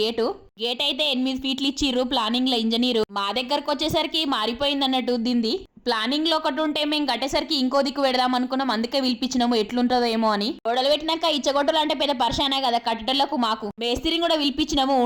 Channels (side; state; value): both; identical; correlation 1.00